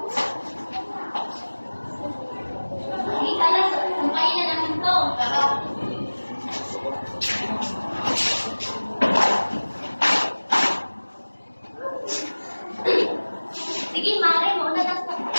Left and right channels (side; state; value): both; inverted; correlation -1.00